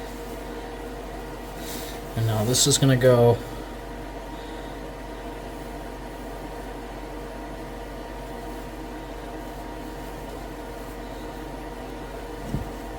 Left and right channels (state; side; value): identical; both; correlation 1.00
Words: And now this is going to go